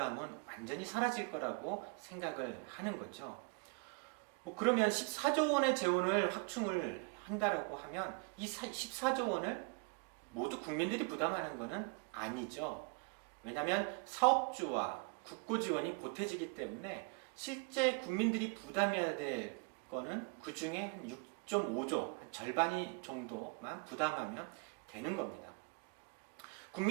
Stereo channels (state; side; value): quieter; left; 33.5 dB